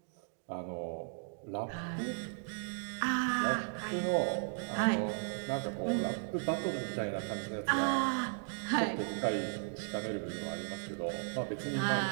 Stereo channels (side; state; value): left; silent; 54 dB below the other